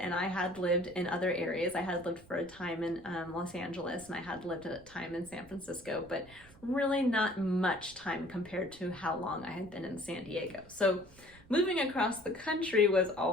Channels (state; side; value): noise; right; rumble, 23 dB below the sound